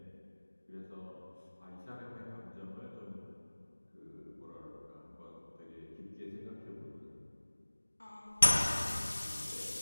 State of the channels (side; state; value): both; inverted; correlation -1.00